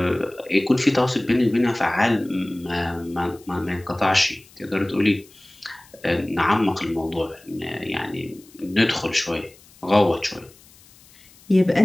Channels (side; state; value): left; noise; hiss, 26 dB below the sound